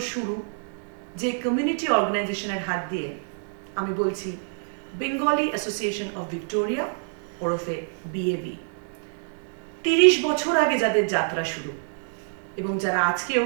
শুরু যে কমিউনিটি অর্গানাইজেশনের হাত দিয়ে, আমি বলছি বেঙ্গলি অ্যাসোসিয়েশন অফ ভিক্টোরিয়া ওরফে বিএভি। 30 বছর আগে যাদের যাত্রা শুরু এবং যারা আজকেও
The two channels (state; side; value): silent; left; digital silence